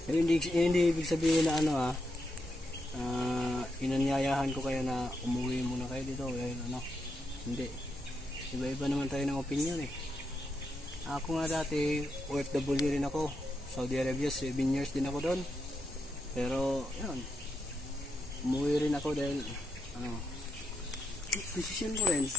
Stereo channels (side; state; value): both; normal; correlation 0.83